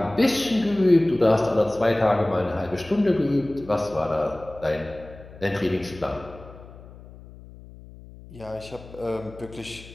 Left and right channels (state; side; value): noise; left; hum, 18 dB below the sound